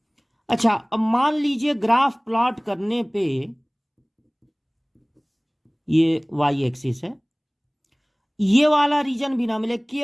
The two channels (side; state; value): both; identical; correlation 1.00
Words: अच्छा, अब मान लीजिए ग्राफ प्लॉट करने पे ये वाई एक्सिस है, ये वाला रीजन भी ना मिले,